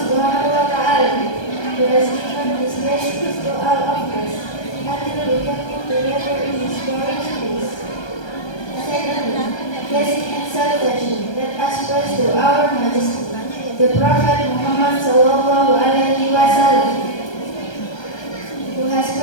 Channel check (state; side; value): late; right; 1.3 ms